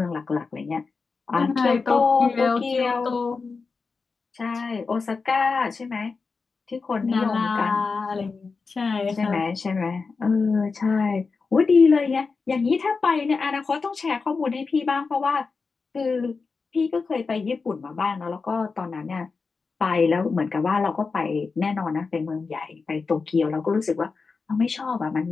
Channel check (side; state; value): right; quieter; 4.6 dB